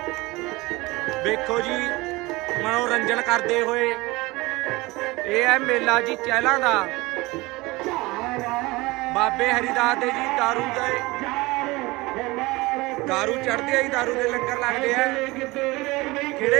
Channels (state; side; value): quieter; left; 22.1 dB